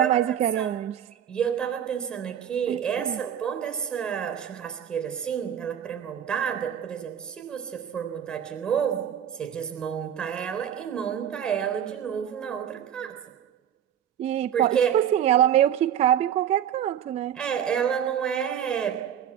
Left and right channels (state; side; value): quieter; left; 9.4 dB